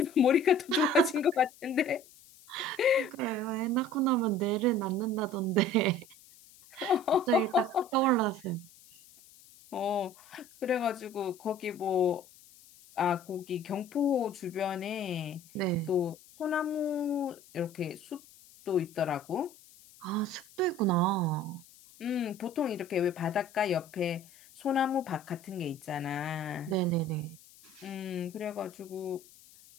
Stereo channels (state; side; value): noise; left; hiss, 24 dB below the sound